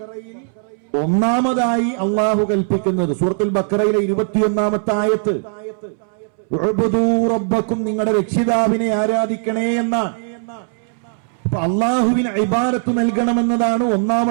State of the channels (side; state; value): left; silent; 67 dB below the other